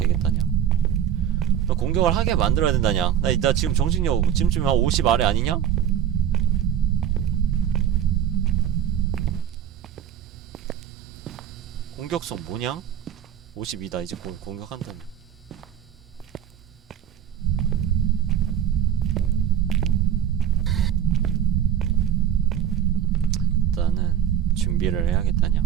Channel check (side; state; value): left; quieter; 9.8 dB